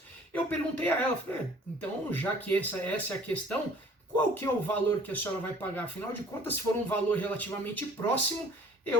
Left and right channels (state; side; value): normal; both; correlation 0.52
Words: eu perguntei a ela, falei, então já que essa é a questão, qual que é o valor que a senhora vai pagar? Afinal de contas, se for um valor relativamente próximo,